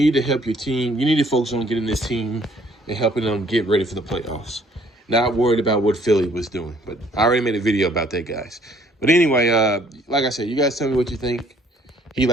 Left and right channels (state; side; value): normal; both; correlation 0.60